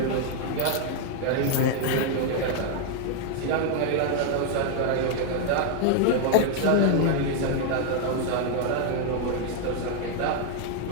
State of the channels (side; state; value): both; different; correlation 0.00